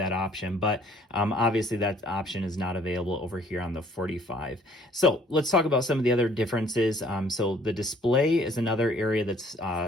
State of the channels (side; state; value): both; normal; correlation 0.58